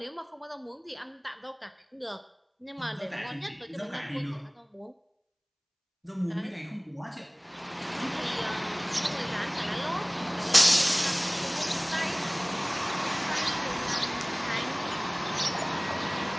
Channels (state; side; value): identical; both; correlation 1.00